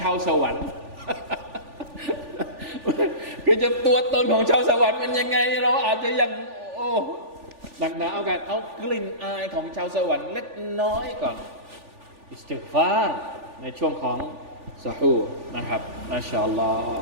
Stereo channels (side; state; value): left; late; 3.4 ms